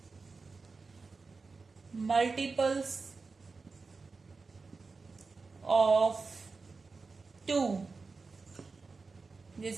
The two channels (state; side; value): quieter; left; 4.2 dB